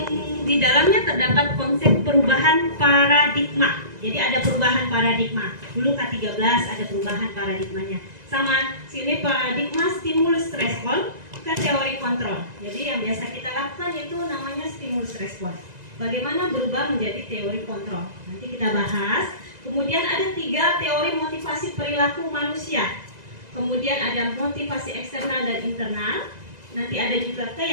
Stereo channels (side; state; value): left; late; 2.0 ms